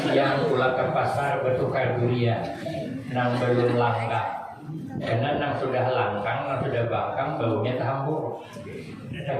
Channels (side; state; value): both; identical; correlation 1.00